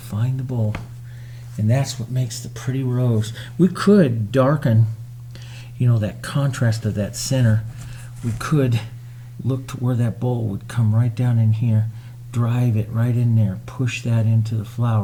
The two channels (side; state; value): both; identical; correlation 1.00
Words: the bowl. And that's what makes the pretty rose. We could darken, you know, that contrast of that center. We could look to where that bowl would come right down in here, drive it right in there, push that into the